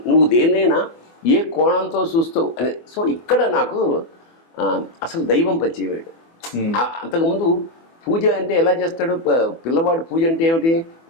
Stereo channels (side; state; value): right; late; 24 ms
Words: నువ్వు దేనైనా ఏ కోణంతో చూస్తావు అని. సో ఇక్కడ నాకు అసలు దైవం పరిచయమయ్యాడు. అంతకుముందు పూజ అంటే ఎలా చేస్తాడు పిల్లవాడు? పూజ అంటే ఏమిటి?